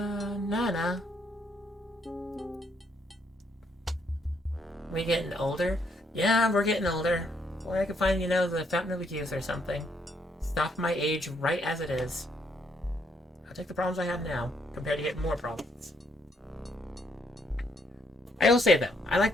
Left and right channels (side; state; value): both; normal; correlation 0.72